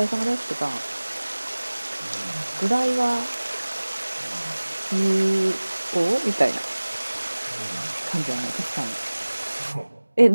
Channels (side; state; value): both; inverted; correlation -1.00